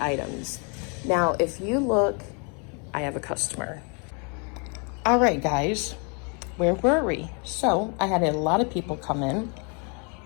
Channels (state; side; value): quieter; right; 36.4 dB